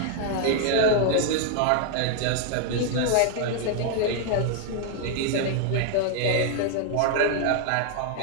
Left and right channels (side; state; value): both; different; correlation 0.00